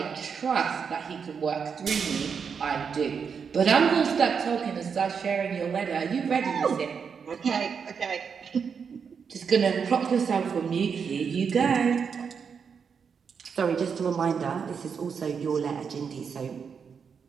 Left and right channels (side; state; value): left; quieter; 6.4 dB